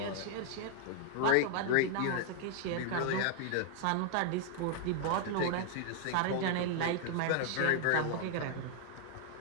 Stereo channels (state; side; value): different; both; correlation 0.00